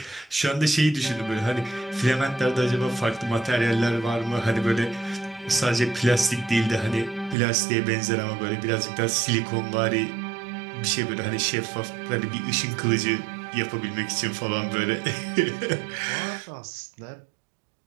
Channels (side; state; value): left; drops out; at 7.4 s